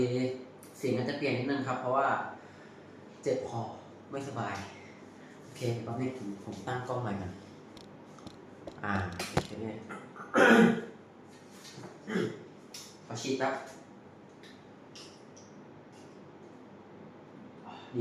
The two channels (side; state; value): both; identical; correlation 1.00